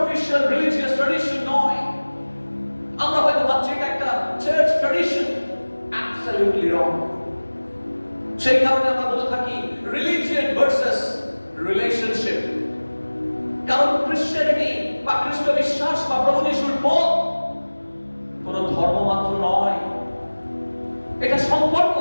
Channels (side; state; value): both; inverted; correlation -1.00